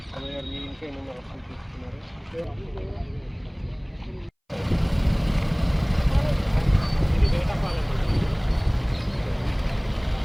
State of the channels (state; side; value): identical; both; correlation 1.00